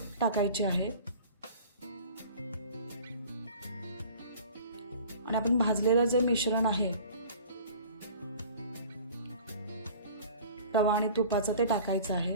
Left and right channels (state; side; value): inverted; both; correlation -0.45